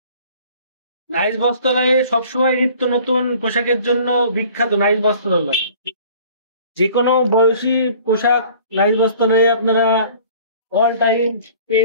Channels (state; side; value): inverted; both; correlation -0.50